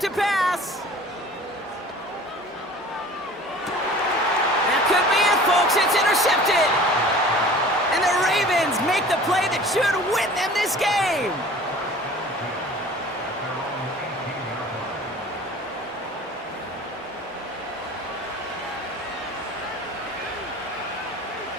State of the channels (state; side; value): normal; both; correlation 0.44